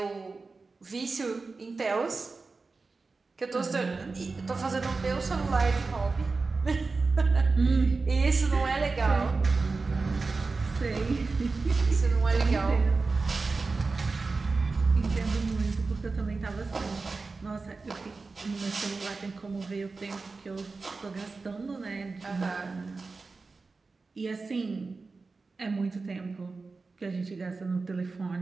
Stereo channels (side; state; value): left; quieter; 4.0 dB